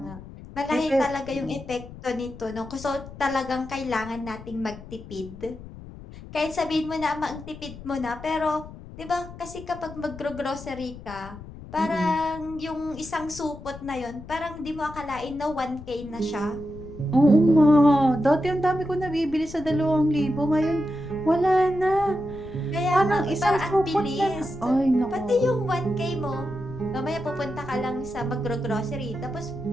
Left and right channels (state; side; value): noise; left; rumble, 15 dB below the sound